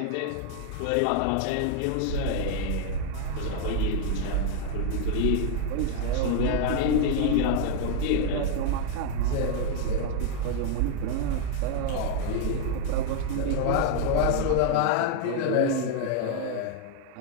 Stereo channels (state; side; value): different; both; correlation 0.00